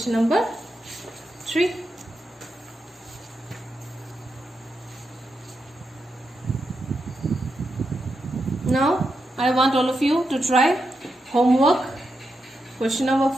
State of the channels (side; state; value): both; normal; correlation 0.86